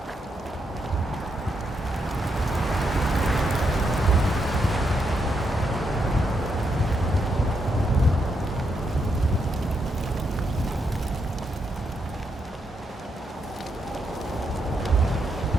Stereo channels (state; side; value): normal; both; correlation 0.80